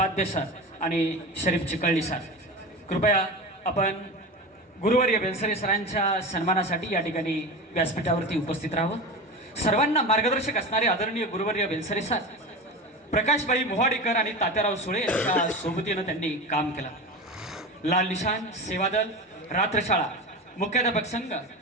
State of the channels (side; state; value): both; normal; correlation 0.26